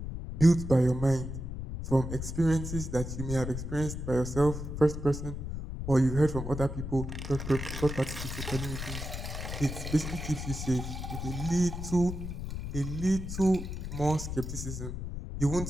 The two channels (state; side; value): noise; left; rumble, 6 dB below the sound